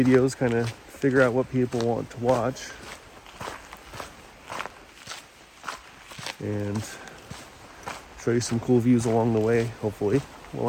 kind of figure out what people want to watch, and show you some cool views along the way, hopefully,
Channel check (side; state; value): both; identical; correlation 1.00